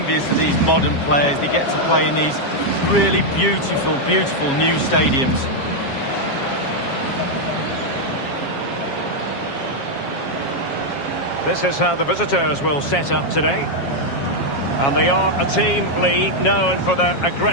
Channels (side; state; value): right; late; 7.3 ms